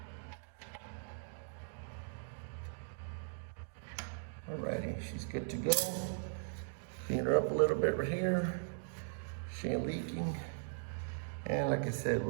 Alrighty, she's good to go. Clean her up a little bit right here. She ain't leaking. And like I said,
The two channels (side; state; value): left; silent; digital silence